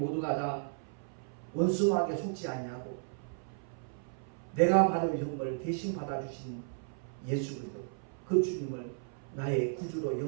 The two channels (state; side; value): silent; left; 55 dB below the other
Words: 다 원수마귀에 속지 아니하고 내가 받을 형벌을 대신 받아주신 예수 그리스도 그 주님을 나의 구주로